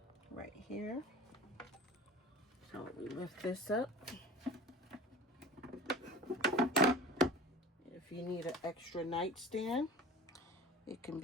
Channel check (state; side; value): normal; both; correlation 0.37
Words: right here. So we lift this up. If you need an extra nightstand, it can